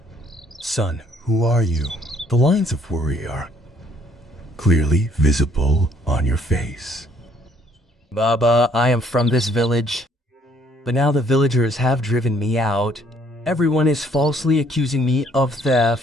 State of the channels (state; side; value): normal; both; correlation 0.64